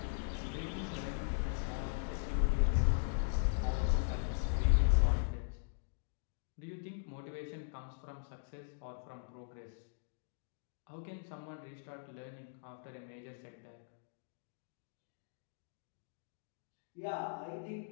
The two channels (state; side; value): silent; right; digital silence